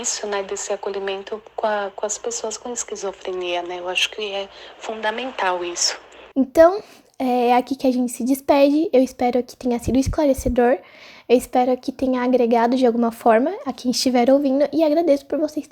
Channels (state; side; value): identical; both; correlation 1.00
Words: né, desse acolhimento com as pessoas com esquizofrenia, né? Eu acho que é fundamental isso. Então, é aqui que a gente se despede. Eu espero que tenha sido esclarecedor. Eu espero que tenha agregado de alguma forma a quem estiver ouvindo. E agradeço por vocês